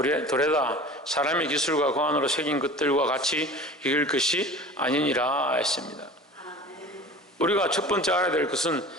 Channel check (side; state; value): both; normal; correlation 0.39